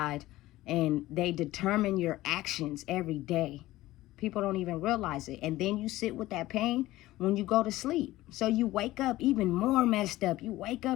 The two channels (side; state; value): right; quieter; 16.8 dB